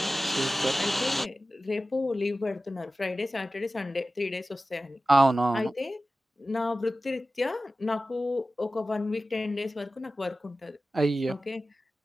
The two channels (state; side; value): normal; both; correlation 0.95